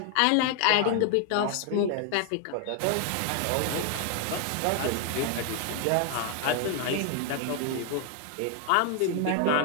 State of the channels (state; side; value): different; both; correlation 0.00